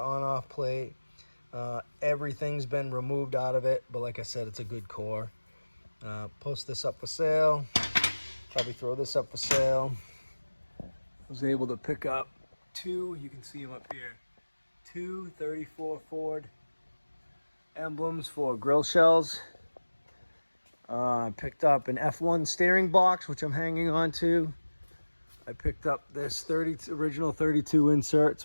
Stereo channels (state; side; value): inverted; both; correlation -1.00